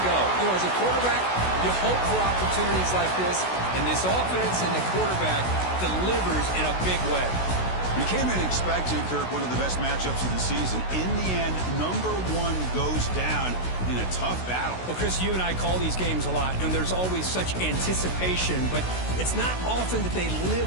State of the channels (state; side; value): late; right; 16 ms